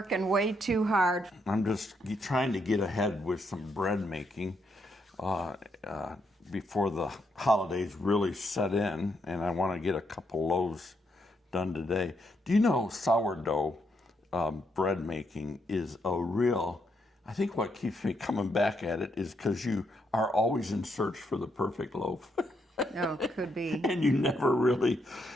way too hard. I'm just trying to get ahead with some bread making before the holidays really set in, and I want to get a couple loaves done today. Do you know sourdough bread making is a real, I think what keeps me coming back at it is because you are always in search for the perfect loaf. Oh, could be. And you never really,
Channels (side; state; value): both; normal; correlation 0.78